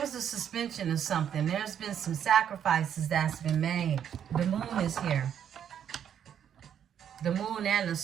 a suspension of something. There's been some sacrifices that's been made. The moon is here. The moon and the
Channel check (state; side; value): quieter; left; 9.1 dB